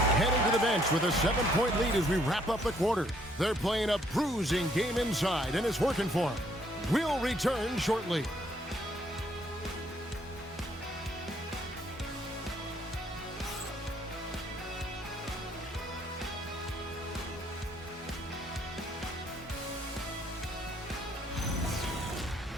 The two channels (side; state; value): both; normal; correlation 0.67